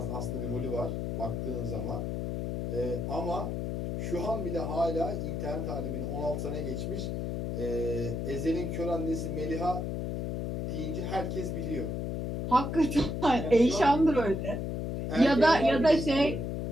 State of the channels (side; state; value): left; noise; hum, 2 dB below the sound